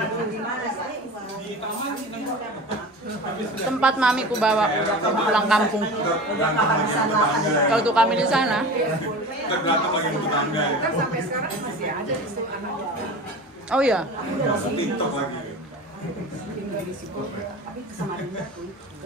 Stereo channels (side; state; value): both; normal; correlation 0.34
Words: Tempat Mami ku bawa pulang kampung. Kalau tuh kami di sana. Kan sampai sekarang masih ada di situ anak. Oh iya.